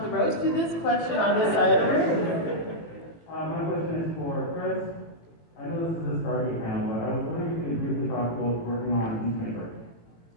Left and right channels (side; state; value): right; late; 18 ms